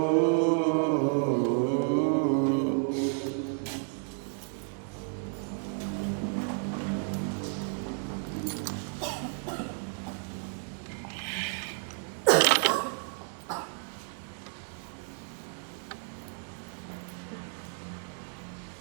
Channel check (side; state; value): left; silent; 56 dB below the other